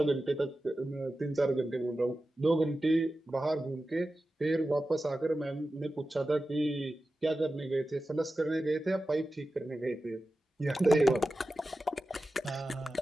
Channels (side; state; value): both; normal; correlation 0.93